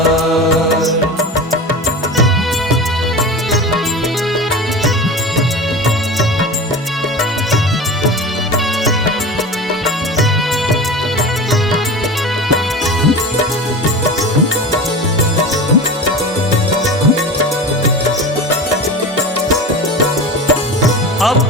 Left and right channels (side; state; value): both; normal; correlation 0.31